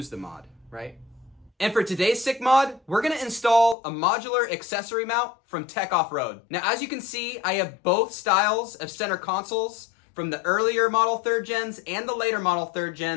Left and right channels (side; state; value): right; drops out; at 3.8 s